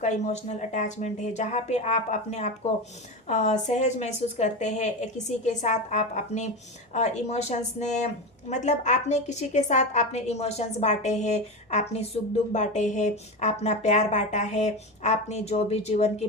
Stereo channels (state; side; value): normal; both; correlation 0.20